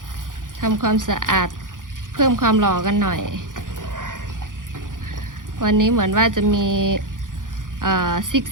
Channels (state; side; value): late; left; 0.89 ms